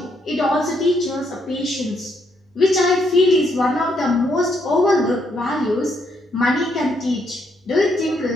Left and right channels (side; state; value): both; normal; correlation 0.74